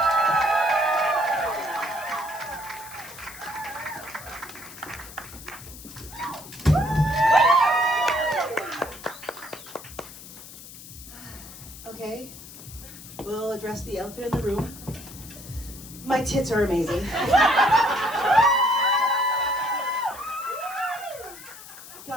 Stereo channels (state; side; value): noise; left; hiss, 16 dB below the sound